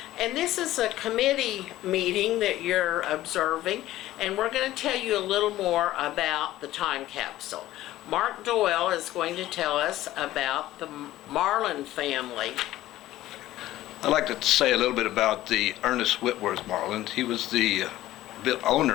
and this is a committee meeting that you're observing, and we're going to tell you a little more about the time capsule. Mark Doyle is going to tell us about the Marland family. I'd like to say a little bit about the Ernest Whitworth Marland. He was the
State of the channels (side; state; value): right; quieter; 15.1 dB